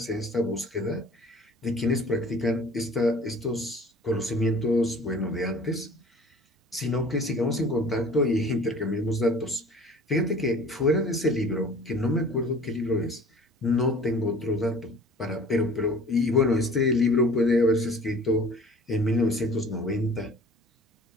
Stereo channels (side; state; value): both; normal; correlation 0.47